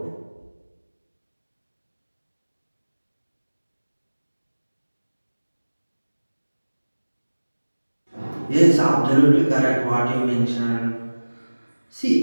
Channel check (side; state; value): both; inverted; correlation -1.00